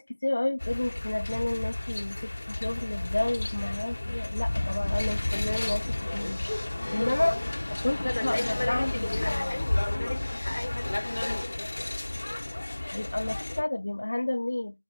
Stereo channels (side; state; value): both; inverted; correlation -1.00